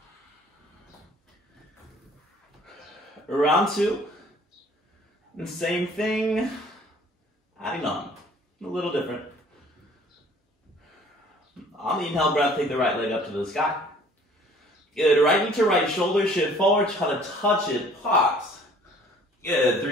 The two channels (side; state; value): both; normal; correlation 0.54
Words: Round 2, and same thing, adding on, a little different. On the inhale breath, take the right leg up to the sky. Good, right knee to right shoulder, shift forward, try to touch it, pause. Good,